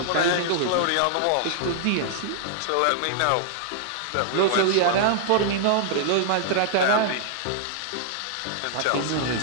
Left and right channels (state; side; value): different; both; correlation -0.01